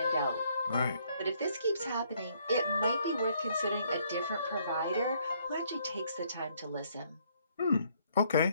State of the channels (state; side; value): inverted; both; correlation -0.67